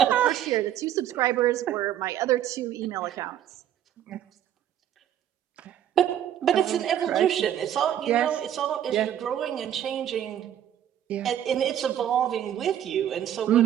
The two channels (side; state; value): left; quieter; 10.8 dB